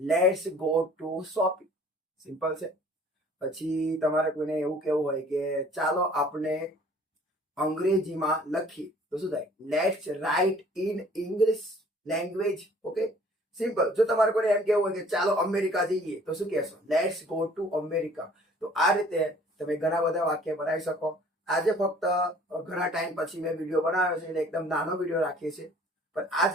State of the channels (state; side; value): normal; both; correlation 0.53